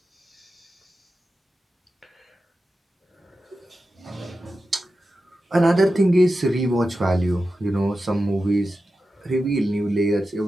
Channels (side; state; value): both; normal; correlation 0.92